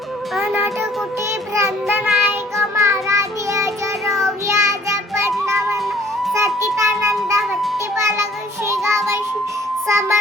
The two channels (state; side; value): normal; both; correlation 0.56